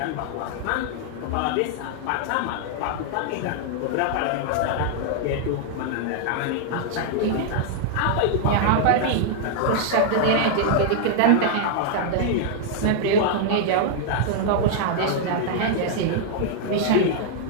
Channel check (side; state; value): both; different; correlation 0.00